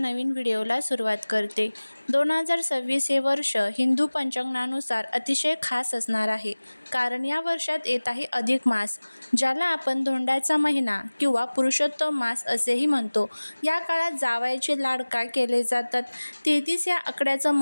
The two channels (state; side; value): inverted; both; correlation -1.00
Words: व्हिडिओला सुरुवात करते. 2026 हे वर्ष हिंदू पंचांगानुसार अतिशय खास असणार आहे, कारण या वर्षात येत आहे अधिक मास, ज्याला आपण धोंड्याचा महिना किंवा पुरुषोत्तम मास असेही म्हणतो. या काळात जावयाचे लाड का केले जातात, 33 या आकड्याचं